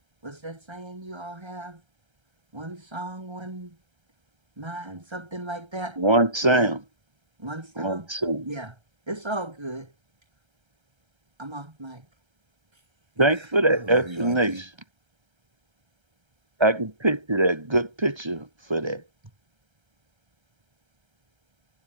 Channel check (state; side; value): late; left; 1.3 ms